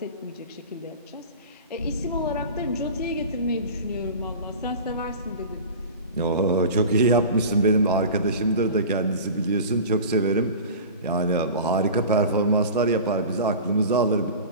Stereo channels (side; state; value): both; inverted; correlation -0.35